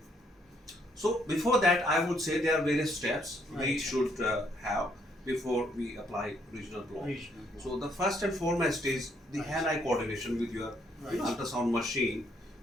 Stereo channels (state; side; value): normal; both; correlation 0.70